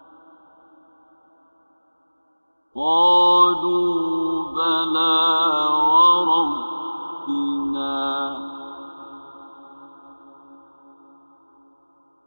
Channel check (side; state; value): both; inverted; correlation -1.00